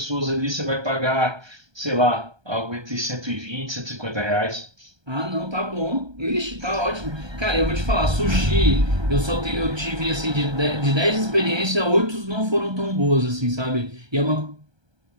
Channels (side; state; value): left; late; 1.3 ms